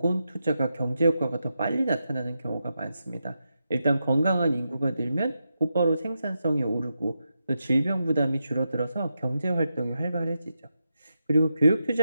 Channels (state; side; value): inverted; both; correlation -0.87